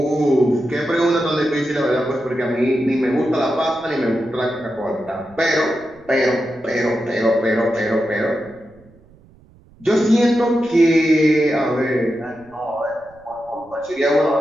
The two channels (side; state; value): right; noise; rumble, 27 dB below the sound